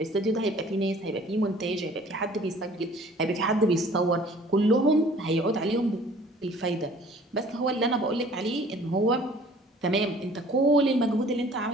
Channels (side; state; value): both; normal; correlation 0.51